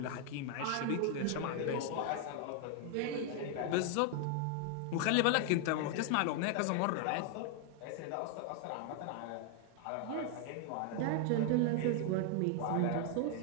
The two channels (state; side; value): different; both; correlation 0.00